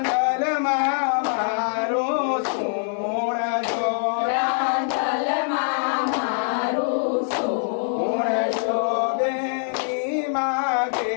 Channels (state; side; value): silent; right; digital silence